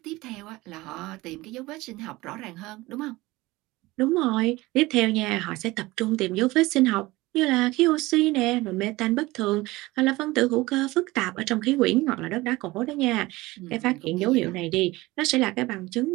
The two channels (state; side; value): quieter; left; 20.1 dB